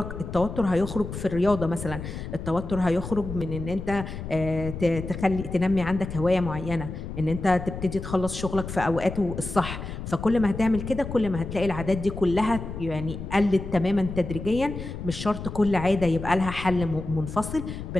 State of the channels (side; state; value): left; noise; rumble, 8 dB below the sound